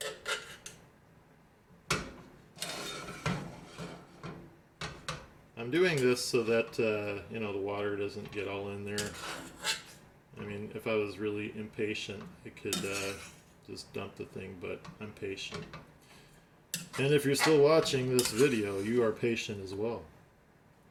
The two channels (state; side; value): identical; both; correlation 1.00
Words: I'm doing this so that the water doesn't get all in there. I mean, if I was really impatient, I could just dump the thing, but I'm patient. And if you're still watching this video, you are patient as well.